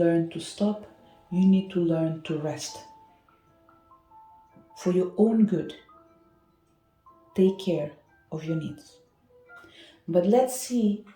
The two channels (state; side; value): identical; both; correlation 1.00